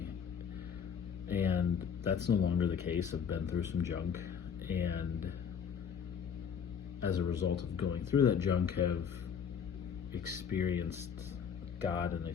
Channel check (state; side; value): quieter; right; 7.3 dB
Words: And that's no longer the case. I've been through some junk, and as a result of going through that junk, have experienced God and